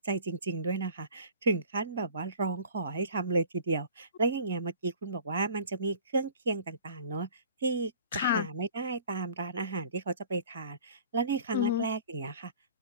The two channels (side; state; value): both; inverted; correlation -0.46